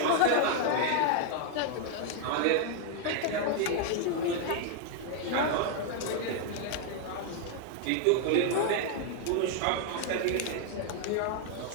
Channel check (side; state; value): both; different; correlation 0.00